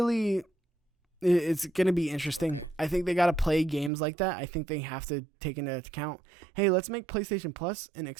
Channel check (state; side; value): drops out; left; at 3.9 s